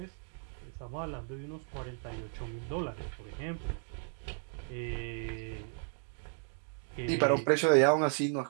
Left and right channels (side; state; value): left; silent; 55 dB below the other